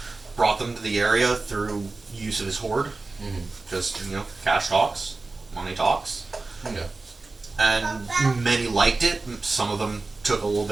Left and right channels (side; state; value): left; quieter; 3.6 dB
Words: brought them to the area through use of his hoard. Mm-hmm. Just, cash talks, money talks. Yeah. And many liked it. Some of them took a little